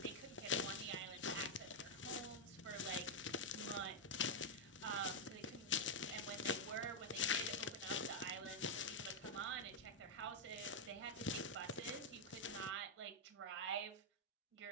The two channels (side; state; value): both; normal; correlation 0.00